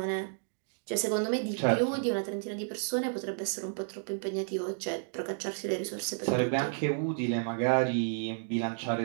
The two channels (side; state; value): left; silent; digital silence